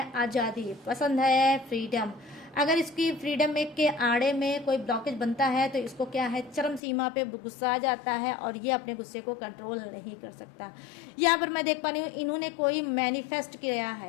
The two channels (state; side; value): drops out; right; at 6.8 s